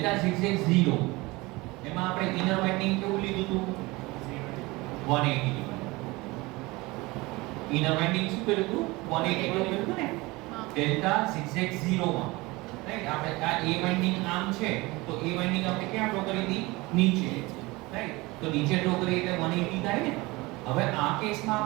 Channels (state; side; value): quieter; left; 22.5 dB